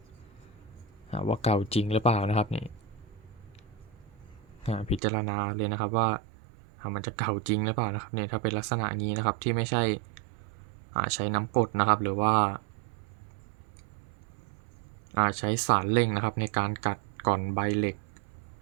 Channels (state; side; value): drops out; left; at 5.0 s